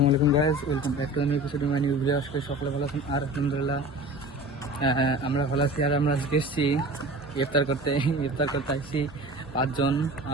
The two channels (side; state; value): both; normal; correlation 0.38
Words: আলাইকুম guys, welcome back to new episode my new video. আজকে সকলে ভালো আছেন আর আলহামদুলিল্লাহ আমরা ভালো আছি। আর আমরা আজকে এসেছি ইফতার করতে আসছি পাঁচজন,